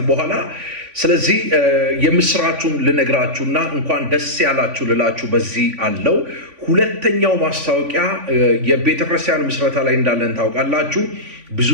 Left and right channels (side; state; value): left; late; 3.5 ms